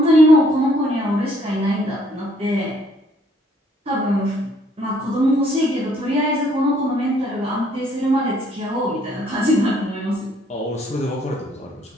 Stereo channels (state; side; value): normal; both; correlation 0.64